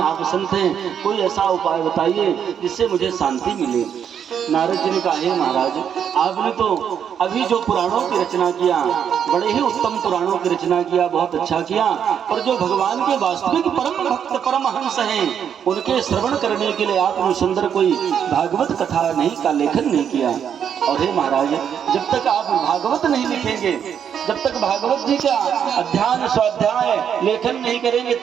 आप संत हैं, कोई ऐसा उपाय बताइए जिससे मुझे शांति मिले। नारद जी ने कहा, हे महाराज आपने तो अभी जो पुराणों की रचना किया, बड़े ही उत्तम पुराणों की रचना किया, बहुत अच्छा किया, पर जो भगवान के वास्तविक परम भक्त परमहंस हैं उनके श्रवण करने के लिए आपने सुंदर कोई भागवत कथा नहीं का लेखन नहीं किया। और हे महाराज जब तक आप भागवत नहीं लिखेंगे, जब तक भागवत जी का अध्ययन स्वाध्याय लेखन नहीं करेंगे,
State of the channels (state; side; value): quieter; left; 8.3 dB